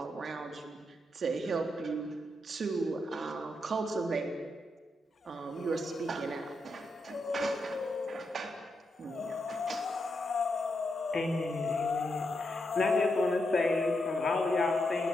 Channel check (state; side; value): normal; both; correlation 0.83